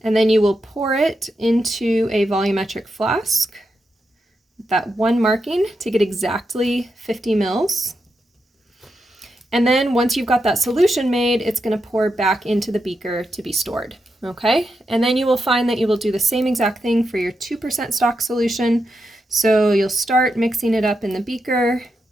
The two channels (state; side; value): normal; both; correlation 0.85